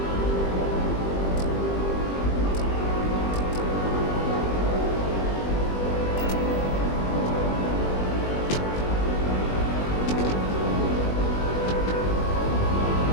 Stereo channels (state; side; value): late; right; 21 ms